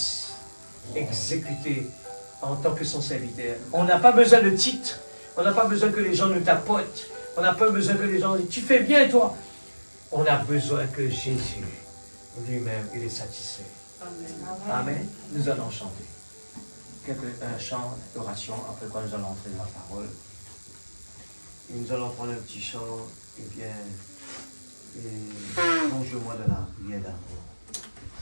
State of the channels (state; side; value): inverted; both; correlation -1.00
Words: exécuté en tant que son serviteur. On n'a pas besoin de titre, on n'a pas besoin que les gens nous tapotent, on n'a pas besoin que les gens disent « tu fais bien toi ». On a besoin que Jésus lui-même, il est satisfait. Amen. Amen. Nous allons chanter un chant d'oration, après quoi nous allons entrer dans la parole. Et nous allons prendre un petit chant, et bien, plonge-moi dans la prière d'amour.